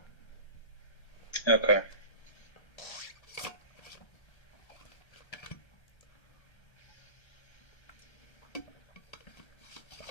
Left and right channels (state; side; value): late; right; 1.3 ms